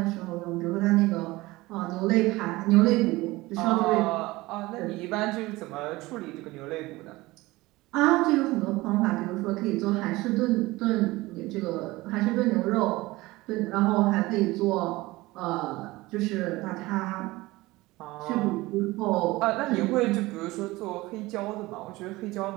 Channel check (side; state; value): left; quieter; 20.1 dB